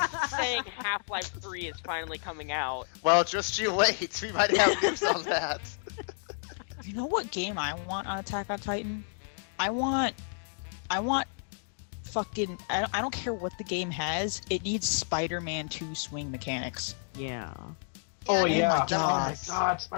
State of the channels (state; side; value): silent; right; digital silence